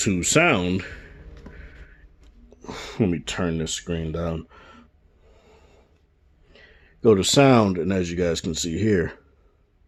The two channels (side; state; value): both; identical; correlation 1.00